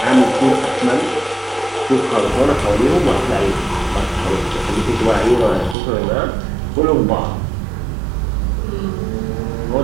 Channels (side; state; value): left; drops out; at 5.8 s